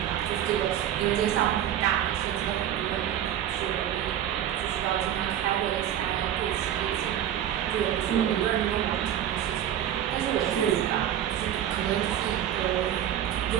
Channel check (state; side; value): quieter; left; 10.7 dB